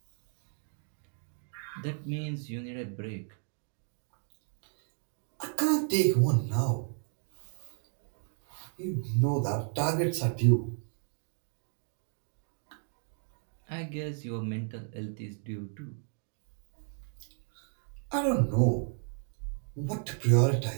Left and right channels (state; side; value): silent; left; 55 dB below the other